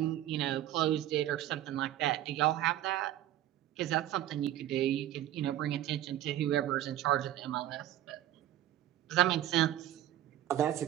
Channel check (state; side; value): quieter; left; 13.0 dB